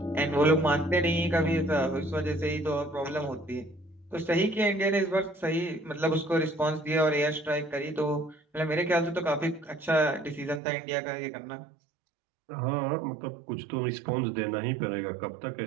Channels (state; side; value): drops out; left; at 10.6 s